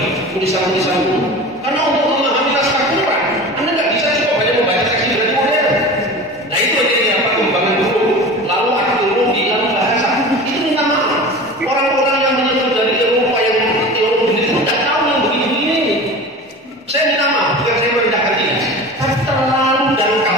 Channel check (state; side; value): normal; both; correlation 0.34